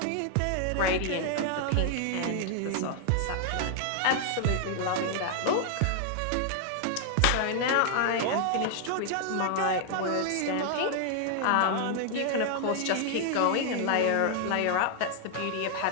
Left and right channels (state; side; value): different; both; correlation 0.00